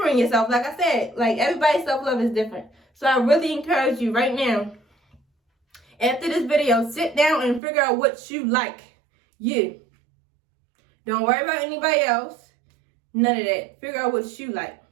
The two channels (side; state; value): left; drops out; at 7.6 s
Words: yourself. Like I said, like, everybody's self-love is different. So I really encourage you right now, after this video, sit down and figure out what you like. You. Don't worry about anybody else. None of that. Figure out what you like.